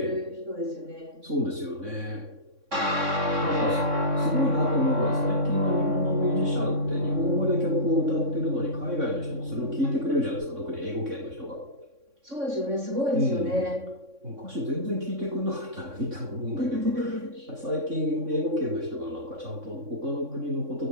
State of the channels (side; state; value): left; late; 3.6 ms